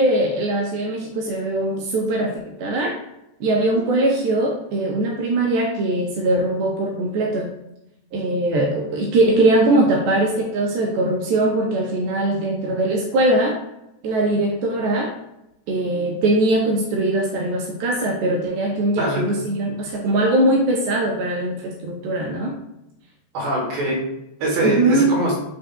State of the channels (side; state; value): left; late; 14 ms